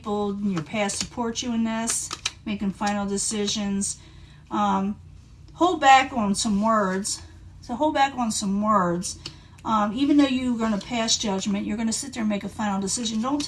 in your past support you in this, making final decisions. Hold back on some words. So hold back on some words. Even though you're going to pass judgment, you're going to sit there and make a final decision. Don't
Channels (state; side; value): identical; both; correlation 1.00